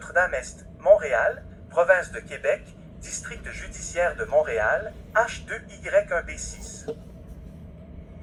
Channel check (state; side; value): identical; both; correlation 1.00